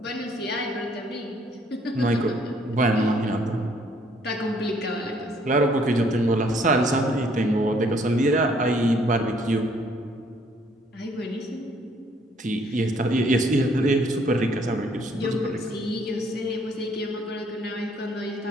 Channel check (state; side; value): normal; both; correlation 0.64